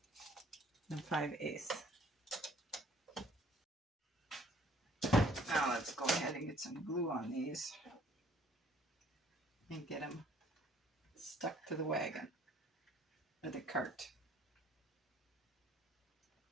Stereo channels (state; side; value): normal; both; correlation 0.59